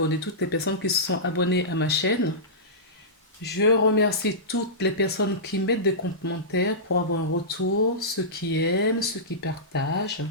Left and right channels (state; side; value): normal; both; correlation -0.17